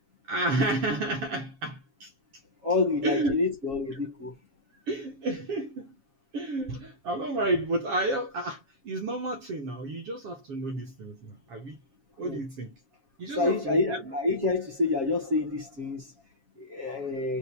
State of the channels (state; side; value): late; left; 7.3 ms